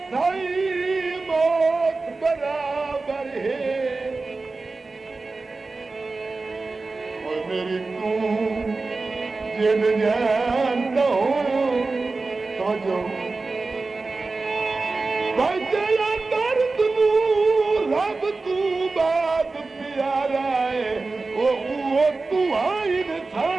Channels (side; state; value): left; quieter; 3.7 dB